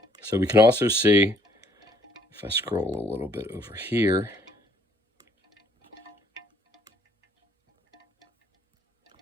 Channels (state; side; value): normal; both; correlation 0.64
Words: So we can also see, if I scroll a little bit over here,